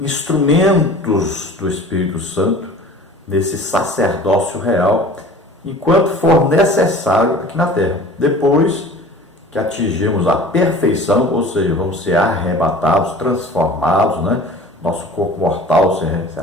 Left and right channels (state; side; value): normal; both; correlation 0.43